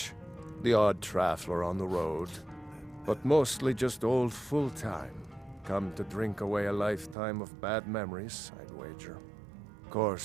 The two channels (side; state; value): left; drops out; at 7.2 s